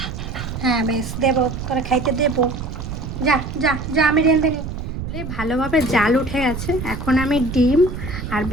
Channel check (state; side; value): noise; right; rumble, 7 dB below the sound